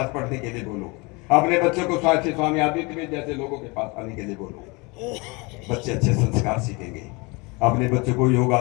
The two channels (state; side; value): quieter; right; 27.5 dB